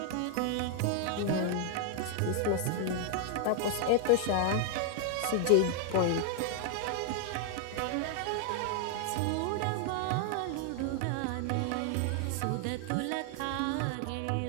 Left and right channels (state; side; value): different; both; correlation 0.00